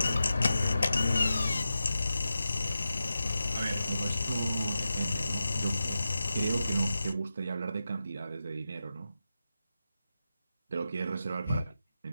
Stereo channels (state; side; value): inverted; both; correlation -0.91